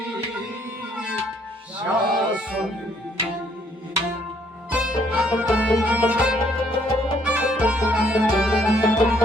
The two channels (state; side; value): normal; both; correlation 0.67